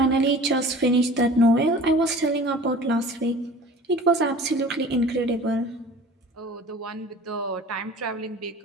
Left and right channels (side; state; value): both; normal; correlation 0.43